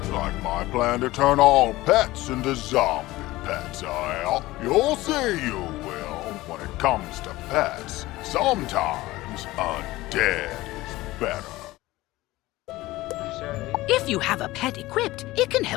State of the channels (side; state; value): right; quieter; 18.4 dB